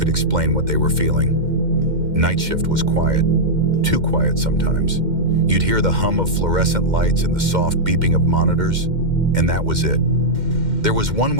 explain what they were feeling. Night shift was quiet, too quiet sometimes. You'd hear the hum of fluorescent lights and the soft beeping of monitors, and that was it. There was one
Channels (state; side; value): late; left; 2.1 ms